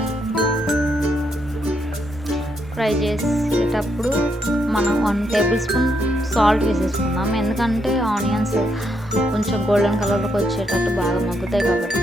ఫ్రై చేసేటప్పుడు మనం 1 టేబుల్ స్పూన్ సాల్ట్ వేసేసుకుందాం. ఎందుకంటే ఆనియన్స్ కొంచెం గోల్డెన్ కలర్లోకి వచ్చేటట్టు బాగా మగ్గుతాయి కాబట్టి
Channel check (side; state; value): both; normal; correlation 0.77